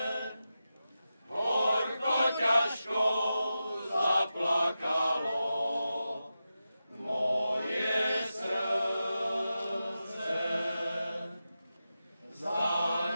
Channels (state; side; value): inverted; both; correlation -0.91